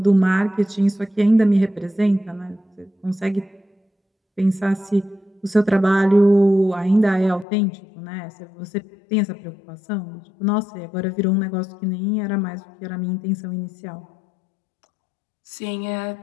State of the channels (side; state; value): right; drops out; at 7.5 s